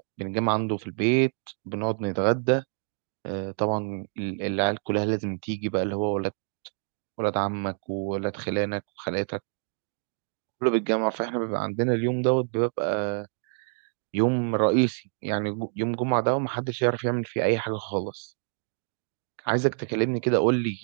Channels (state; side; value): silent; left; digital silence